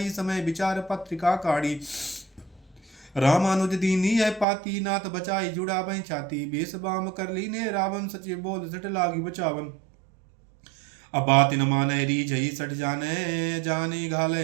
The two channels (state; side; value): drops out; left; at 4.5 s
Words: समय विचार पत्रिका काढ़ी रामानुज दीनी है पाती नाथ बचाई जुड़ा बह छाती बेस बाम कर ली ने रावण सचिव बोल सट लागी बचावन अब बात न माने री जई सट जाने